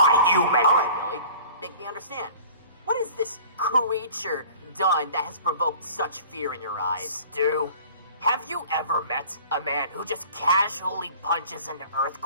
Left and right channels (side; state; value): both; inverted; correlation -0.45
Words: human! Alright, Billy, make me understand. What has this creature done that has provoked such fear in your eyes? Stu, have you ever met a man who just casually punches an